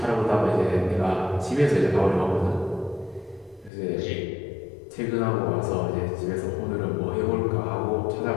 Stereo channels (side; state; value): right; drops out; at 3.7 s